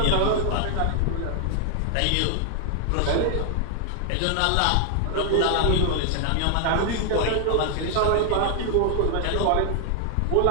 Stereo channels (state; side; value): different; both; correlation 0.00